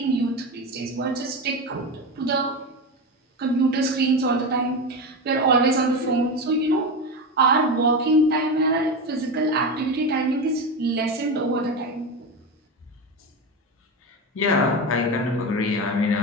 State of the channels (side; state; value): both; normal; correlation 0.19